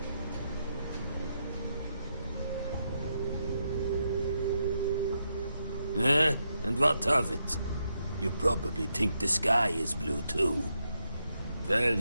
And what of it? You probably think the sky is blue too. Well,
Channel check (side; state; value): both; inverted; correlation -0.82